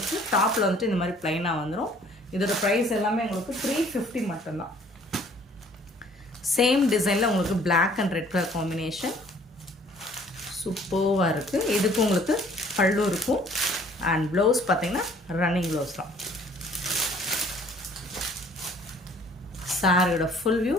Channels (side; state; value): both; normal; correlation 0.57